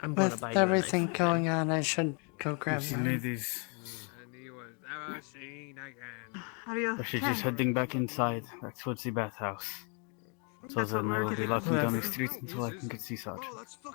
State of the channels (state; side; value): quieter; right; 36.3 dB